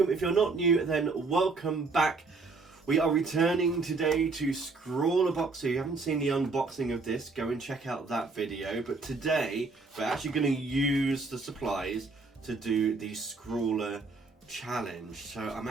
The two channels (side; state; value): left; quieter; 3.9 dB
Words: if you're not new then welcome back. We are returning today to ScrawlrBox. So if you haven't seen the unboxing of this, go and check out that video. But today we're actually going to use the supplies to do the ScrawlrChallenge. So I'm